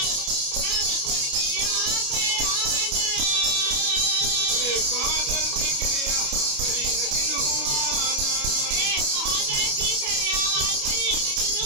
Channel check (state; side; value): late; left; 29 ms